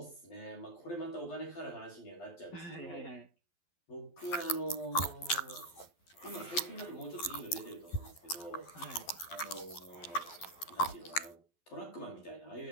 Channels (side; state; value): right; late; 12 ms